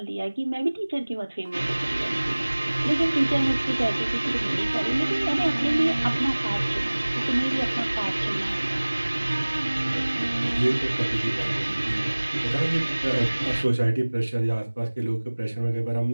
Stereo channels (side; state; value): both; inverted; correlation -1.00